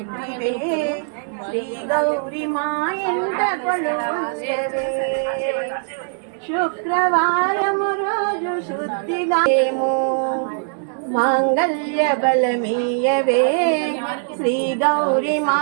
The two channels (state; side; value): silent; left; digital silence